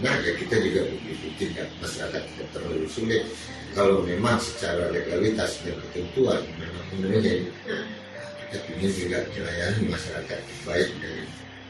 ya kita juga begitu, tidak masyarakat tidak terlalu sulit. Kalau memang secara legalitas dan ketentuan memang memenuhi, kita ingin juga melayani masyarakat baik dari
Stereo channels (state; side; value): identical; both; correlation 1.00